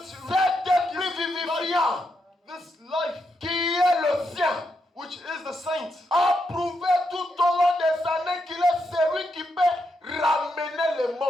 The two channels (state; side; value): normal; both; correlation 0.82